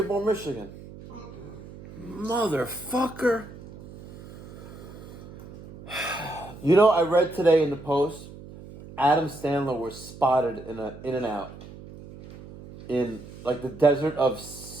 Michigan. Motherfucker. You know, I read today in the Post, Adam Sandler was spotted in a In-N-Out in like the desert of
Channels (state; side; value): noise; right; hum, 16 dB below the sound